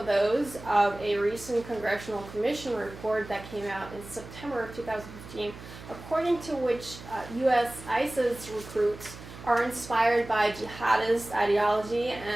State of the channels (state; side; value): noise; right; hum, 15 dB below the sound